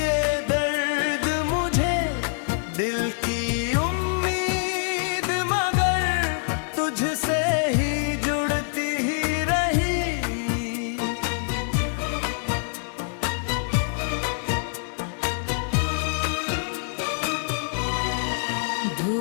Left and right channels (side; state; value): right; silent; 62 dB below the other